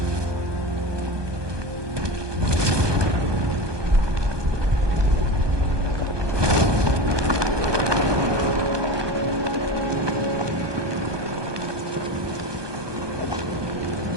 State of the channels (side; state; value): left; late; 1.2 ms